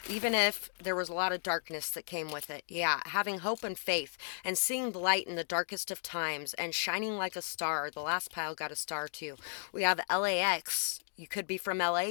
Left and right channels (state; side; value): silent; right; digital silence